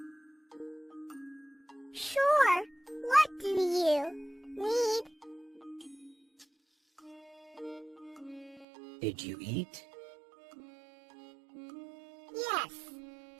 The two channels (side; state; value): left; drops out; at 8.7 s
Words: Sure. What do you need? Did you eat? Yes,